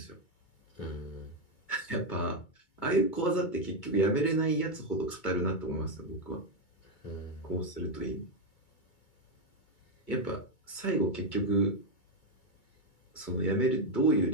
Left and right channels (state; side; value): late; right; 2.2 ms